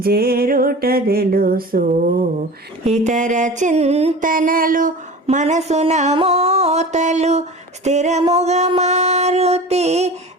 జేరుట తెలుసు ఇతర చింతనలు మనసున మోతలు స్థిరముగా మారుతి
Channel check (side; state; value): both; normal; correlation 0.36